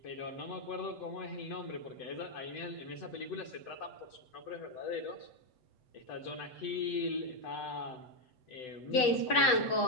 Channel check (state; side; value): late; right; 7.9 ms